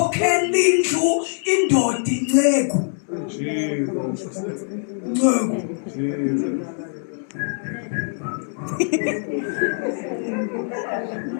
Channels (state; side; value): silent; right; 57 dB below the other